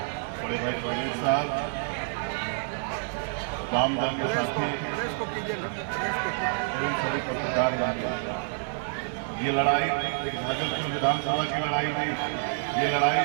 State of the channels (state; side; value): silent; left; 59 dB below the other